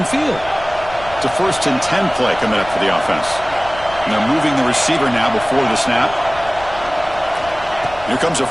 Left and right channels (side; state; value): left; noise; rumble, 17 dB below the sound